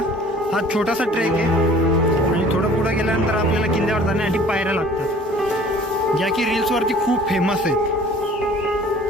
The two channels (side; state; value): both; normal; correlation 0.50